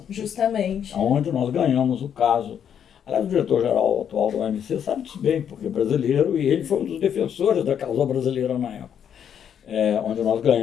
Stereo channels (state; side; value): quieter; right; 8.7 dB